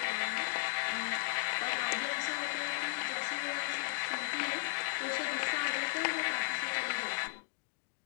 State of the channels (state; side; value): silent; right; digital silence